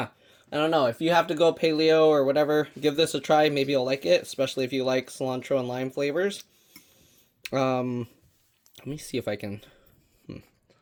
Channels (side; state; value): both; identical; correlation 1.00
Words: I don't know. If you have to go paleo or whatever, give this a try. Maybe you'll like it, especially if you like cilantro and lime flavors. Let me see if I can...